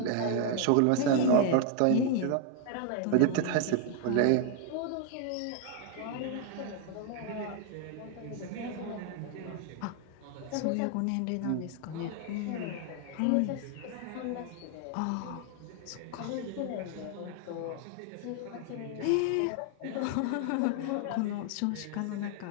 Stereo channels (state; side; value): different; both; correlation 0.00